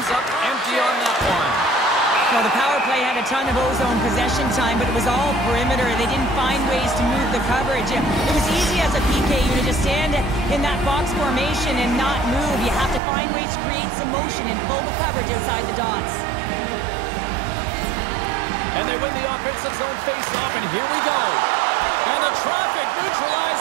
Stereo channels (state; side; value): drops out; left; at 13.0 s